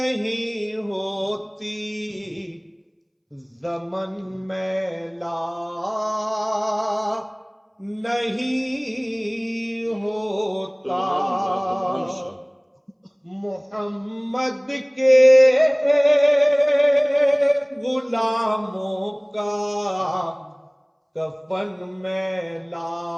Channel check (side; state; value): both; identical; correlation 1.00